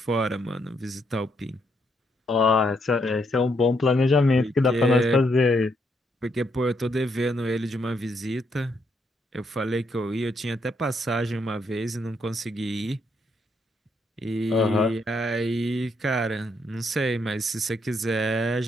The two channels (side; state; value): both; normal; correlation 0.75